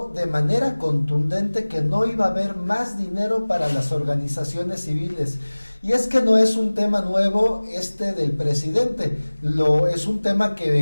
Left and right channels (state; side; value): inverted; both; correlation -1.00